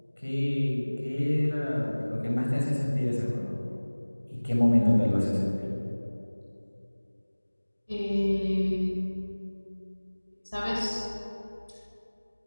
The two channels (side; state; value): both; inverted; correlation -1.00